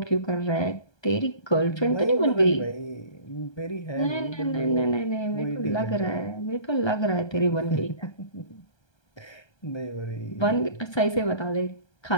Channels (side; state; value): right; late; 1.3 ms